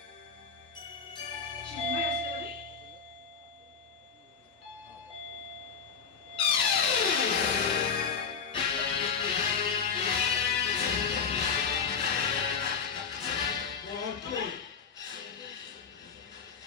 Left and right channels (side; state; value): right; quieter; 6.1 dB